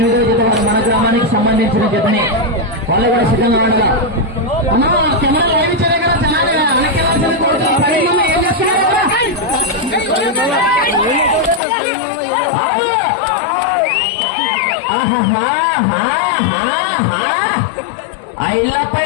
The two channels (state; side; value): drops out; right; at 11.6 s